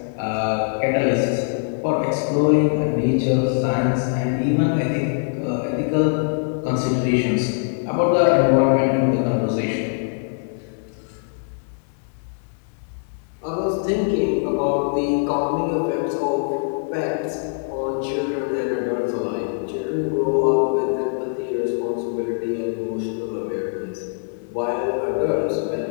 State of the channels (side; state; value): right; silent; digital silence